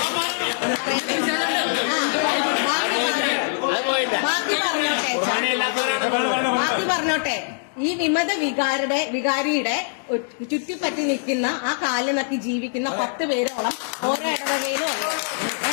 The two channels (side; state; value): right; silent; digital silence